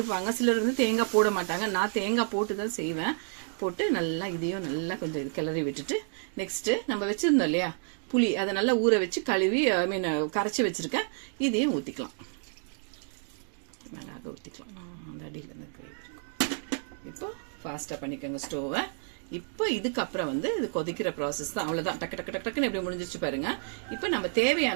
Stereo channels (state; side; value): silent; left; 58 dB below the other